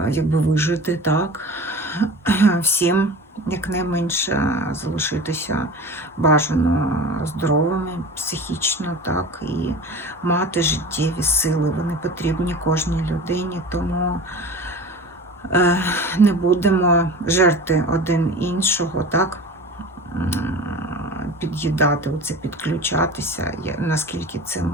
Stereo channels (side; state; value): both; normal; correlation 0.36